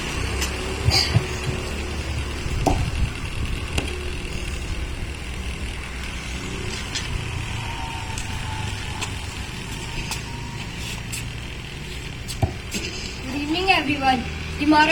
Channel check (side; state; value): both; identical; correlation 1.00